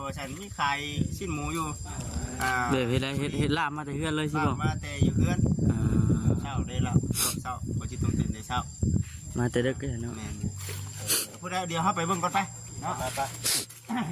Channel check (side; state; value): both; identical; correlation 1.00